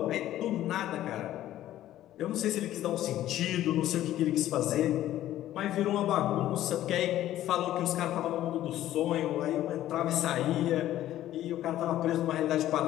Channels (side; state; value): right; quieter; 13.3 dB